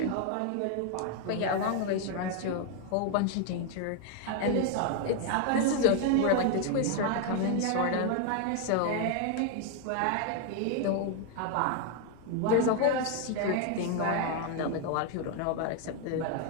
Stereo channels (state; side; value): different; both; correlation 0.01